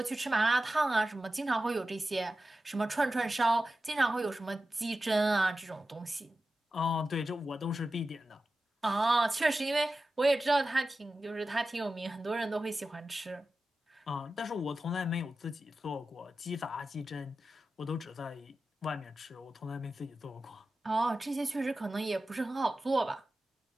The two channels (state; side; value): normal; both; correlation 0.93